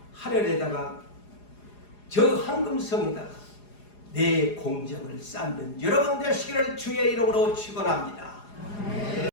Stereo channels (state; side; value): late; right; 4.9 ms